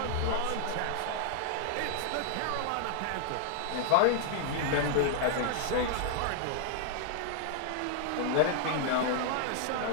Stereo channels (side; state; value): both; different; correlation 0.00